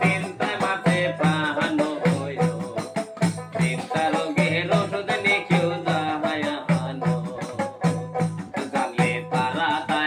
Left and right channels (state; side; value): identical; both; correlation 1.00